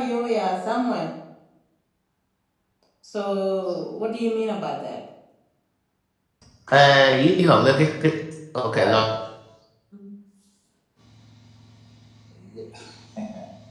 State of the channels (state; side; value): identical; both; correlation 1.00